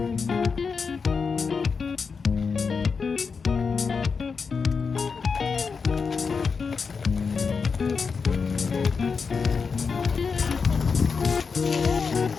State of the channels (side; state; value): right; quieter; 5.3 dB